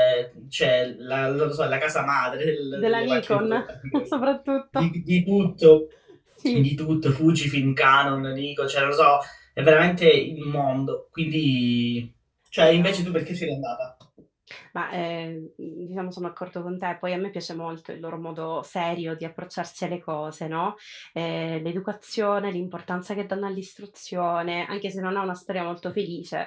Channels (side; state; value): both; identical; correlation 1.00